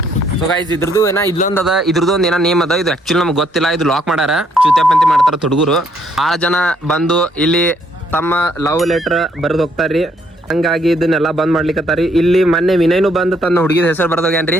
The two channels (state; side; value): normal; both; correlation 0.69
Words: ಸೊ ಗೈಸ್, ಇದ್ರದ್ದು ಏನೋ ಇಲ್ಲೊಂದು ಅದ, ಇದ್ರದ್ದು ಒಂದು ಏನೋ ನೇಮ್ ಅದ. ಇದು ಆಕ್ಚುಲಿ ನಮ್ಗೆ ಗೊತ್ತಿಲ್ಲ. ಇದು ಲಾಕ್ ಮಾಡ್ಯಾರ, ಚುತ್ಯಾಪಂತಿ ಮಾಡ್ತಾರ ಹುಡುಗರು. 6 ಜನ ಬಂದು ಇಲ್ಲಿ ತಮ್ಮ ಲವ್ ಲೆಟರ್ ಬರೆದು ಹೋಗ್ತಾರ್ರಿ. ಹಂಗಾಗಿ ಇದನ್ನೆಲ್ಲ ಬಂದ್ ಮಾಡ್ಲಿಕ್ಕತ್ತಾರಿ. ಇಲ್ಲಿ ಮೊನ್ನೆ ವಿನಯ್ನು ಬಂದು ತನ್ನ ಹುಡುಗಿದ ಹೆಸರು